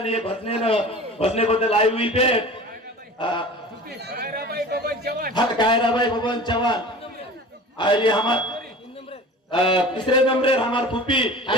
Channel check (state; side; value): normal; both; correlation 0.39